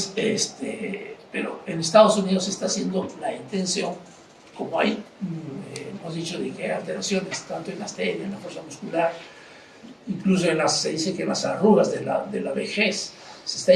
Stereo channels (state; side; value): identical; both; correlation 1.00